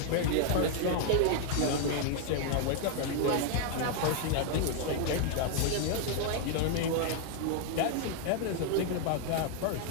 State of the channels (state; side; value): different; both; correlation 0.00